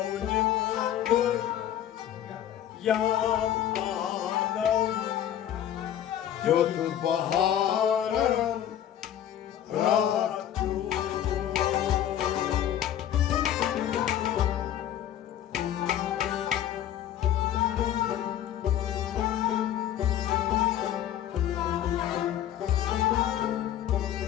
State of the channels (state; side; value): quieter; right; 11.0 dB